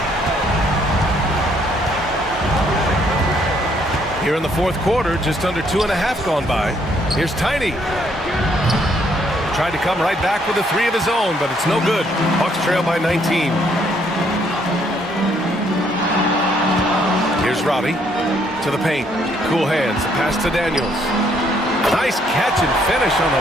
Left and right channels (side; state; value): both; normal; correlation 0.68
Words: Here in the fourth quarter, just under 2.5 gone by. Here's Tiny. Tried to come right back with a three of his own, but it's no good. Bucks trail by 19. Here's Robbie to the paint. Cool hands. The pass to Daniels. Nice catch and finish on